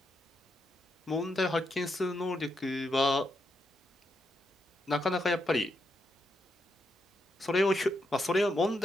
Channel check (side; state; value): both; normal; correlation 0.82